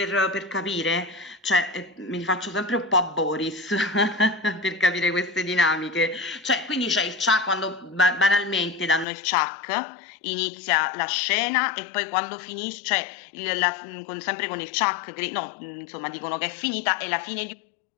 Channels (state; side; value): drops out; right; at 9.1 s